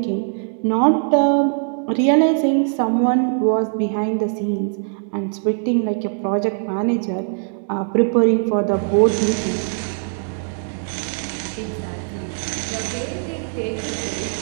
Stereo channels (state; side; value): silent; left; digital silence